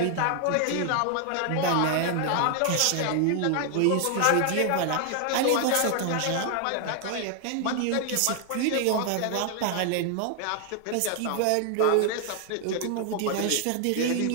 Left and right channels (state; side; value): different; both; correlation 0.00